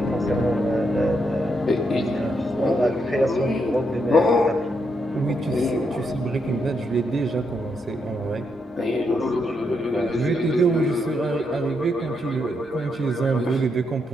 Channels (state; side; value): normal; both; correlation 0.80